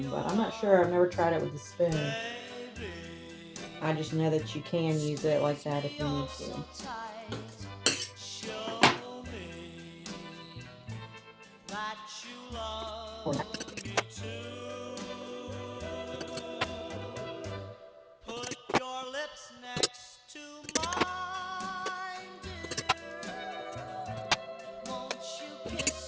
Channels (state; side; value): identical; both; correlation 1.00